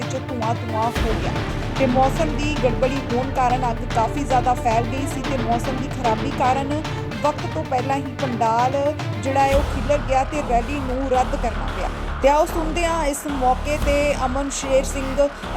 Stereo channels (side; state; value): both; identical; correlation 1.00